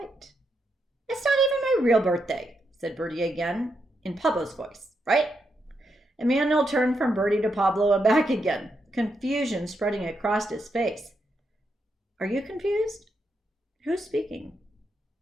It's not even my real birthday, said Birdy again, in Pablo's voice, right? Emmanuel turned from Birdy to Pablo and back again, confusion spreading across his face. Are you confused? Who's speaking?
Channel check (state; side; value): normal; both; correlation 0.82